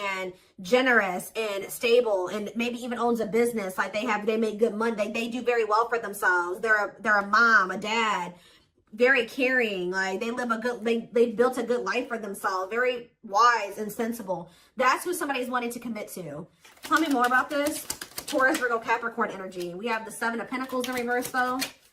generous and stable, and maybe even owns a business. Like they make good money. They do very well for themselves. They're a mom, a dad, very caring. Like they built a good life for themselves. Very wise and sensible. That's who somebody's wanting to commit to. Tell me more about this. Taurus, Virgo, Capricorn energy. We have the 7 of Pentacles in reverse though,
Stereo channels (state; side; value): identical; both; correlation 1.00